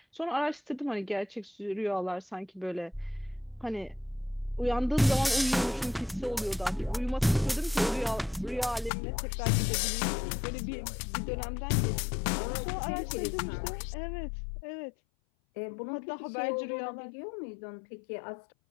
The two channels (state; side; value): drops out; right; at 8.9 s